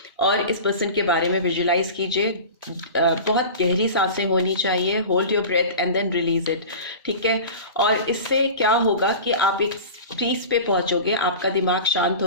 और इस पर्सन के बारे में विजुलाइज कीजिए। बहुत गहरी सांसें होनी चाहिए। Hold your breath and then release it. ठीक है, और इससे क्या होगा कि आप एक पीस पे पहुंचोगे, आपका दिमाग शांत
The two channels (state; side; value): inverted; both; correlation -0.34